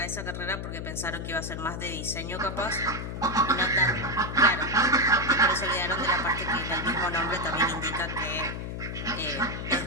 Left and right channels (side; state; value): left; noise; hum, 6 dB below the sound